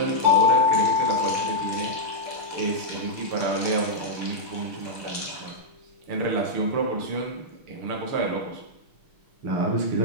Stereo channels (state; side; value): late; left; 6.4 ms